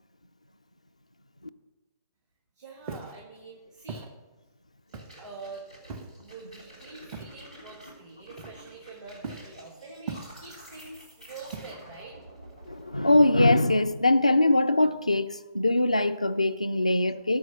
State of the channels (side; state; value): both; inverted; correlation -0.89